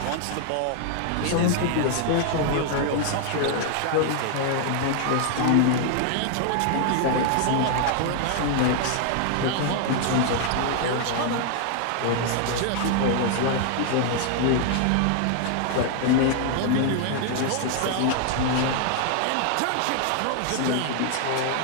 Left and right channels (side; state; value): both; different; correlation 0.00